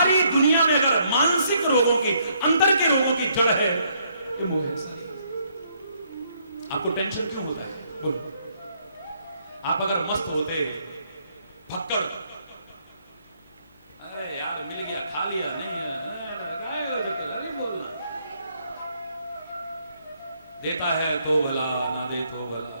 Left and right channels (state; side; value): inverted; both; correlation -0.70